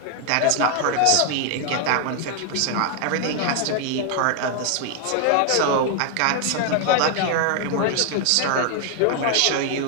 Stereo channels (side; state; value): both; different; correlation 0.00